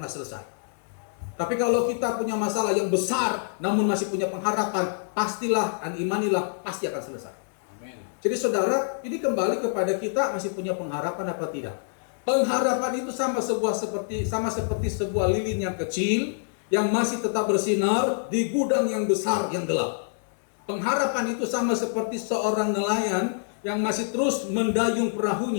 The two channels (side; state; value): right; silent; 61 dB below the other